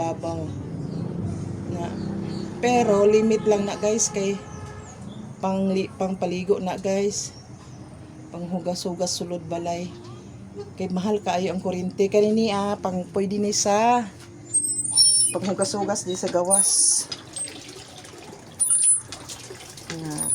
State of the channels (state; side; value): identical; both; correlation 1.00